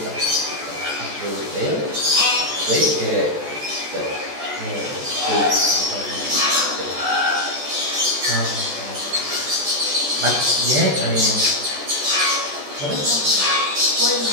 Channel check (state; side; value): late; left; 14 ms